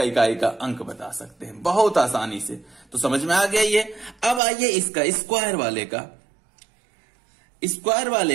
इकाई का अंक बता सकते हैं बहुत आसानी से। तो समझ में आ गया ये। अब आइए इसका स्क्वायर वाले का, स्क्वायर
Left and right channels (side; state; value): left; drops out; at 4.4 s